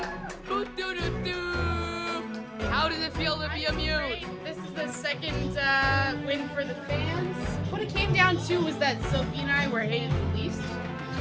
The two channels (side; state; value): both; identical; correlation 1.00